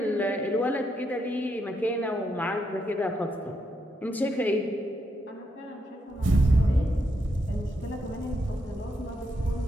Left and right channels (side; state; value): both; normal; correlation 0.80